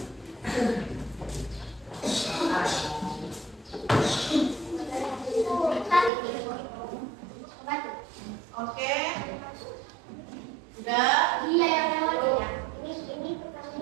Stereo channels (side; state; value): left; drops out; at 6.1 s